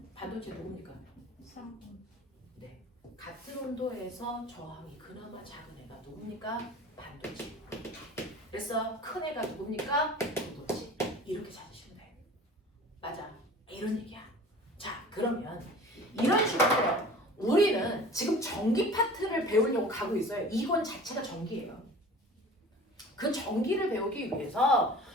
반도체 누굽니까? 3번. 네. 같은 온도에서 저항이 그나마 작은 애가 누굽니까? 반도체. 그래서 큰 애가 누굽니까? 부도체. 이렇게 찾으시면 돼요. 맞아. 이런 얘기야. 자, 그러면 이런 식으로 우리는 지금 전기 파트를 배우려고 가고 있어요. 이건 자체가 전기예요. 그 전기를 배우기 위해서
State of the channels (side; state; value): both; normal; correlation 0.42